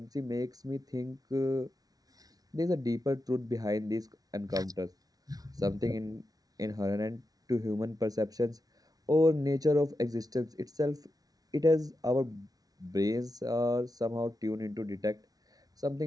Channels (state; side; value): late; left; 0.18 ms